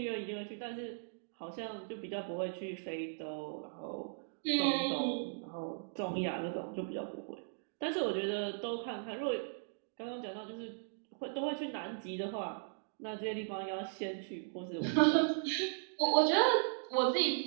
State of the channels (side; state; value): left; silent; digital silence